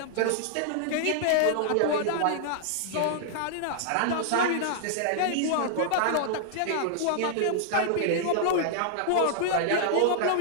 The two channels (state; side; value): different; both; correlation -0.01